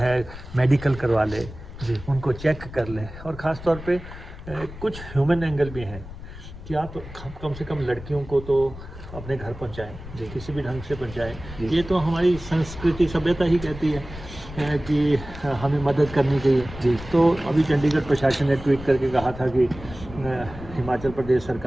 मेडिकल करवा ले, जी उनको चेक कर ले। और ख़ास तौर पे कुछ ह्यूमन एंगल भी हैं कि आप कम से कम लड़कियों को तो अपने घर पहुंचाएं, किसी भी ढंग से पहुंचाएं। ये तो हमारी संस्कृति, सभ्यता ही कहती है कि हमें मदद करनी चाहिए। जी तो अभी चंडीगढ़ प्रशासन ने ट्वीट करके कहा था कि हिमाचल प्रदेश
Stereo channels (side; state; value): left; noise; rumble, 13 dB below the sound